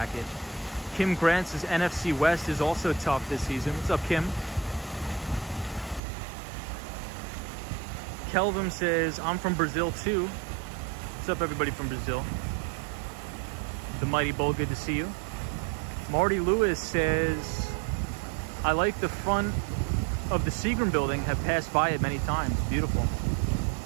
Kim Grant says NFC West is also tough this season. What's up, Kim? Kelvin says, I'm from Brazil too. What's up, everybody from Brazil? The Mighty Bull, good to see you. Marty Lewis says, I like the front of the Seagram building, have passed by it many times. Beautiful.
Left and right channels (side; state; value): left; drops out; at 6.0 s